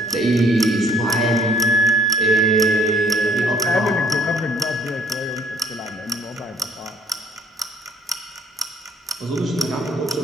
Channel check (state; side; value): normal; both; correlation 0.62